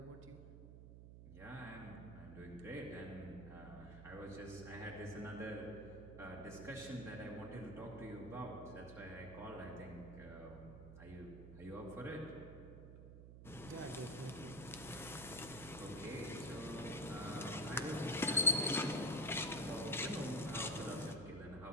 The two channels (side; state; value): right; noise; hum, 12 dB below the sound